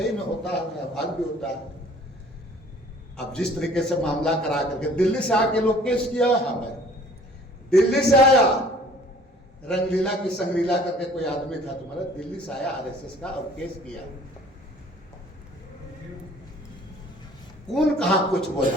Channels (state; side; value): normal; both; correlation 0.53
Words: में होता है, भाग भी होता है। अब जिस तरीके से मामला करा करके दिल्ली से आके लोग केस किया, हमें दिल्ली से आया रंगलीला की संगलीला करके कोई आदमी था तुम्हारा, दिल्ली से आया आरएसएस का और केस किया। कौन कहां कुछ